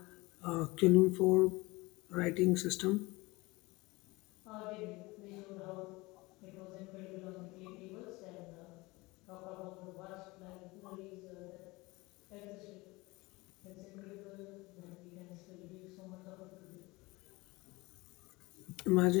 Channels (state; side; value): quieter; right; 22.7 dB